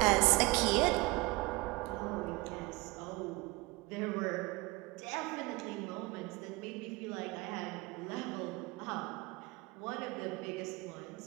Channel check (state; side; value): quieter; left; 22.7 dB